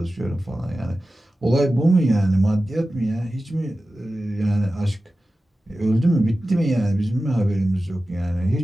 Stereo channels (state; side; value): normal; both; correlation 0.94